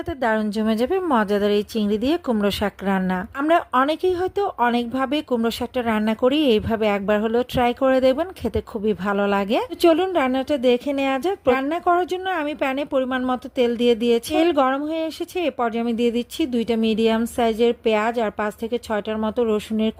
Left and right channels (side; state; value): both; identical; correlation 1.00